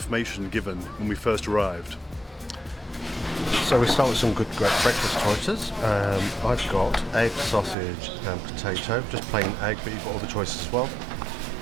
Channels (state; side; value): drops out; left; at 7.8 s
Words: given when we first arrived. So we start with some great breakfast choices. I've got egg, sausage and potato, just plain egg, but you've got all the choices as well.